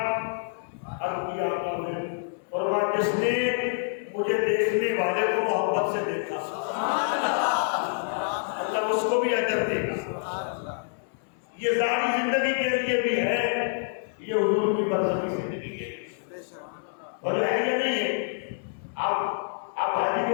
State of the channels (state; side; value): silent; right; 60 dB below the other